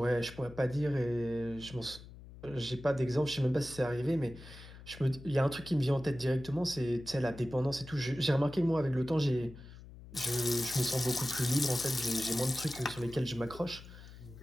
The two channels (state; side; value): noise; left; hum, 17 dB below the sound